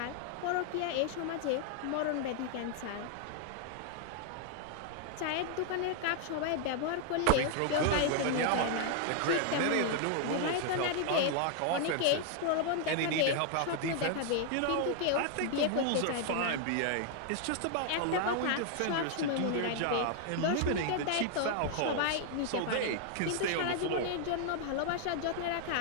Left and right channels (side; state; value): both; different; correlation 0.00